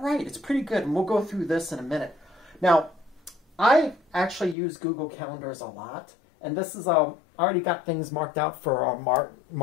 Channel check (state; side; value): drops out; right; at 4.5 s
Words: right. It's pretty good, and we'll go through this in a minute. Now, I actually use Google Calendars a lot, and this is, I already got things marked out for our